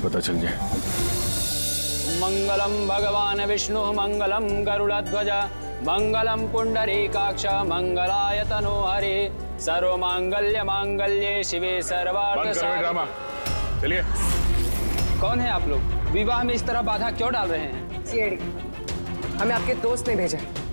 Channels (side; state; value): both; inverted; correlation -1.00